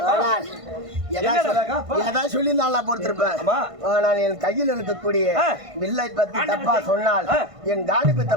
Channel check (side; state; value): left; late; 1.5 ms